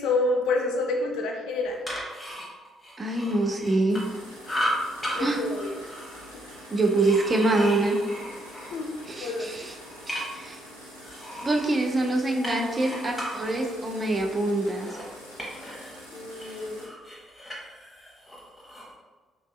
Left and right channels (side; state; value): both; normal; correlation 0.72